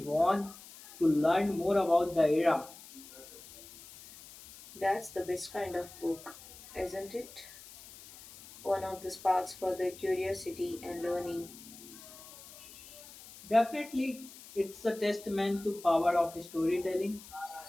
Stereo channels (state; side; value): noise; left; hiss, 18 dB below the sound